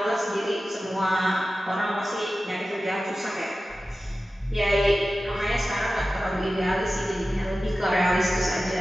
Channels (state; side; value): normal; both; correlation 0.95